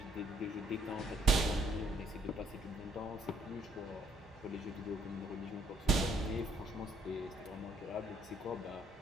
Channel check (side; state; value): both; normal; correlation 0.65